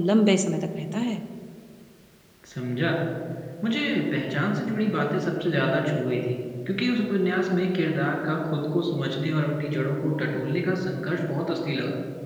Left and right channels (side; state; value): both; identical; correlation 1.00